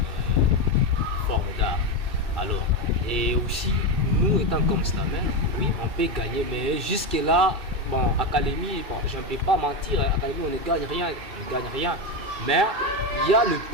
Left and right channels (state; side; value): late; left; 2.6 ms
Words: formes d'art. Alors, et aussi, nous étant comme slameur, oui, on peut gagner, mais jusque-là, bon, à Kalemi, je ne peux pas mentir, à Kalemi on ne gagne rien, mais il y a le